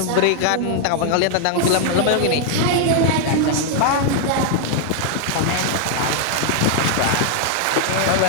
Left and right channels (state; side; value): different; both; correlation 0.00